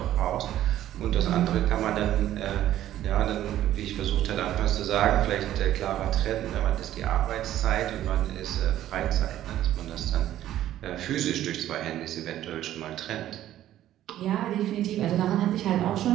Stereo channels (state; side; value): quieter; left; 12.7 dB